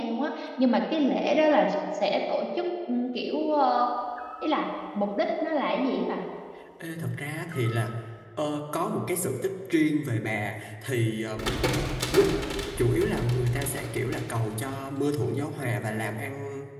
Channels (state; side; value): identical; both; correlation 1.00